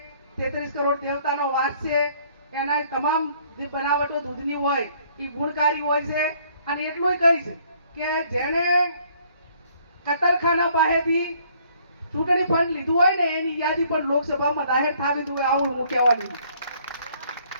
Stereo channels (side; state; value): both; inverted; correlation -0.62